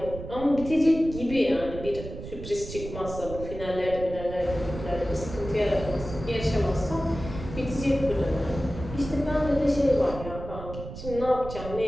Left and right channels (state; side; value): noise; right; rumble, 10 dB below the sound